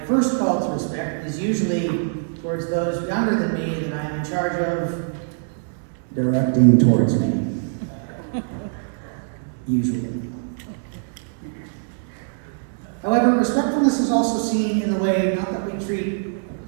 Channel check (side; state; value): left; silent; 63 dB below the other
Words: first call to respect is usually towards those younger than me that I am in charge of directing towards me. Usually. However, respectfulness is also seen in the way, not that we treat